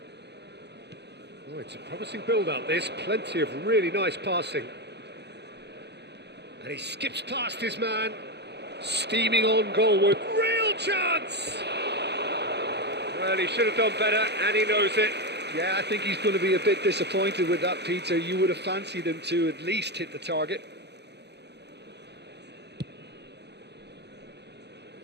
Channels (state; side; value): late; left; 0.50 ms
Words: Oh, it's a promising build-up, this. Plenty of really nice passing. And he skips past his man. Steaming on goalward. Real chance! Well, he should have done better, and he knows it. Yeah, I think he's going to be a bit disappointed with that, Peter. You would have fancied him to at least hit the target.